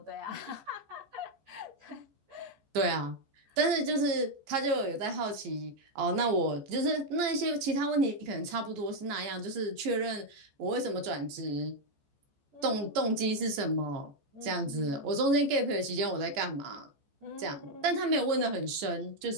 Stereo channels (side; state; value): left; late; 14 ms